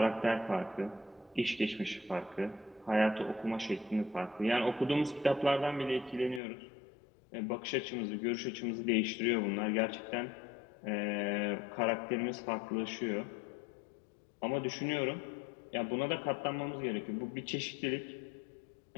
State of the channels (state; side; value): drops out; right; at 6.4 s